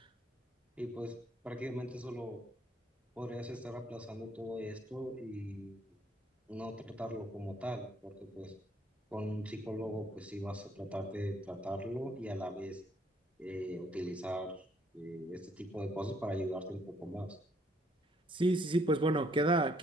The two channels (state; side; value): normal; both; correlation 0.67